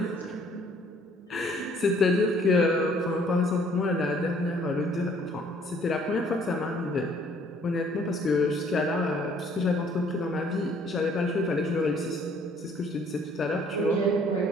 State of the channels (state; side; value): normal; both; correlation 0.60